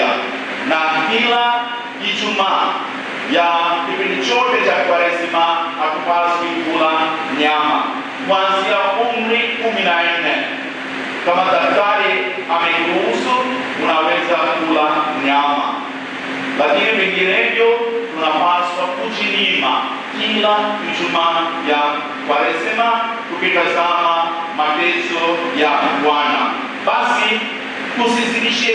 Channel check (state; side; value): identical; both; correlation 1.00